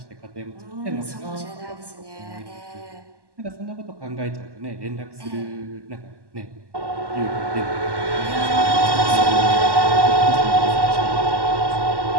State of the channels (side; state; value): left; late; 1.1 ms